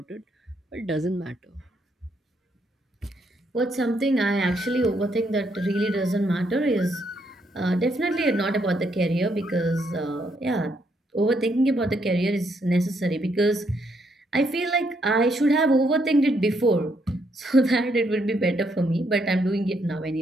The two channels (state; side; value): normal; both; correlation 0.74